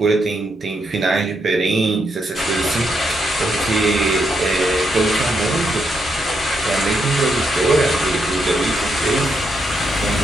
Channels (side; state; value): both; normal; correlation 0.79